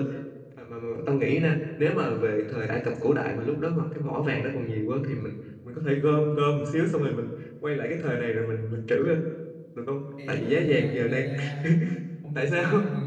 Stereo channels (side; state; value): both; identical; correlation 1.00